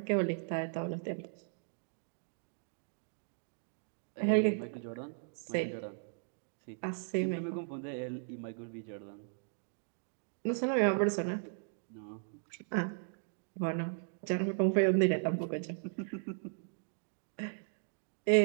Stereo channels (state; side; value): silent; left; digital silence